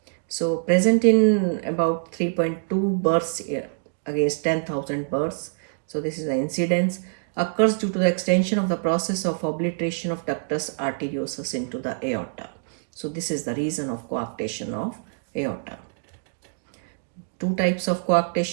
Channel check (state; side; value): silent; left; digital silence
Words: So present in about 3.2 births against 10,000 births. So this is the incidence. Occurs due to the extension of the process of obliteration of ductus arteriosus into the aorta. So this is the reason of coarctation of aorta. Two types of